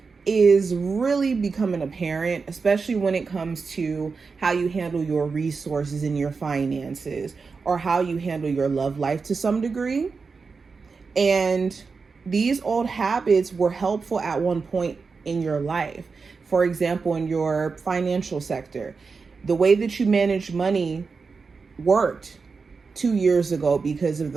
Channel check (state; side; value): quieter; left; 4.8 dB